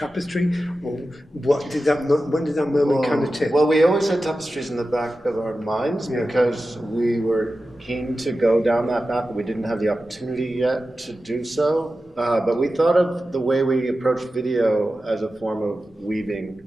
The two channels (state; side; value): normal; both; correlation 0.93